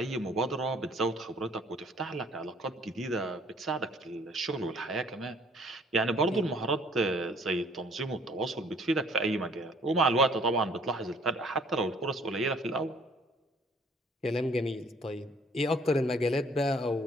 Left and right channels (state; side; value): normal; both; correlation 0.58